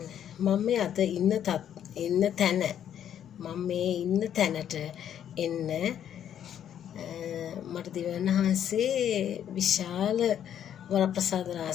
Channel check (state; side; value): quieter; right; 9.8 dB